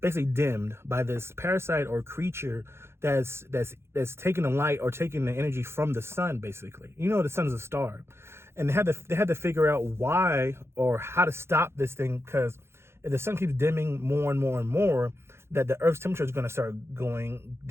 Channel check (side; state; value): left; late; 0.12 ms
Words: basically dimmed by this parasite or creature that's taking the light or taking the energy from the sun. Basically, the sun is a star, and they had to figure out why or how to stop this thing, because if the sun keeps dimming more and more and more, that the Earth's temperature is going to start